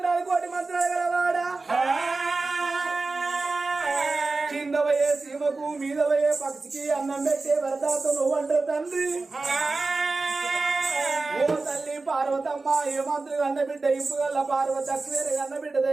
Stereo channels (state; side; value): quieter; left; 3.7 dB